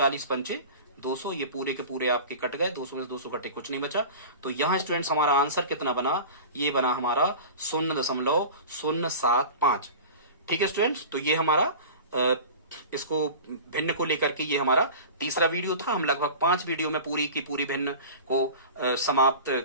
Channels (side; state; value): both; inverted; correlation -0.35